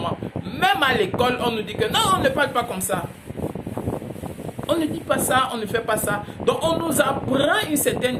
Même à l'école, on nous dit que non, on ne parle pas comme ça. On ne dit pas ça, on ne fait pas ça. Donc on nous apprend une certaine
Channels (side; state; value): both; identical; correlation 1.00